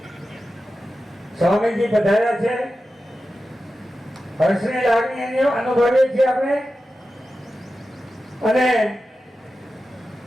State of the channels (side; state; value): both; normal; correlation 0.92